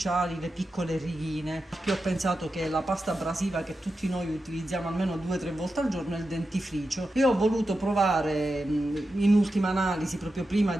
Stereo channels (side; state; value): both; normal; correlation 0.90